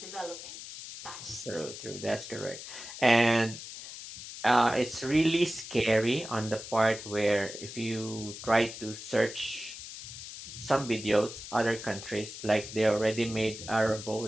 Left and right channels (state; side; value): noise; left; hiss, 11 dB below the sound